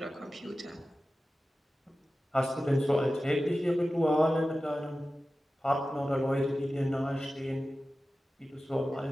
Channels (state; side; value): normal; both; correlation 0.95